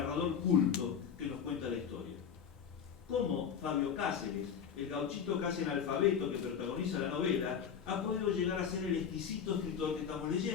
culto que nos cuenta la historia. Cómo Fabio Cáceres, el gauchito casi analfabeto que protagoniza la novela, ha podido llegar a ser el exquisito escritor que estamos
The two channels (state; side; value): quieter; right; 7.4 dB